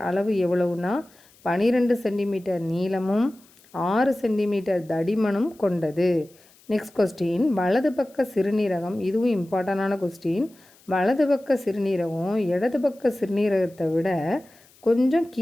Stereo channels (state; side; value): noise; left; hiss, 29 dB below the sound